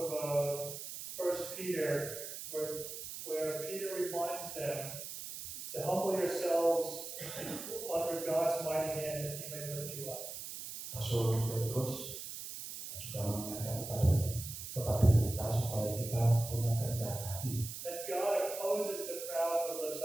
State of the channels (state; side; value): noise; right; hiss, 8 dB below the sound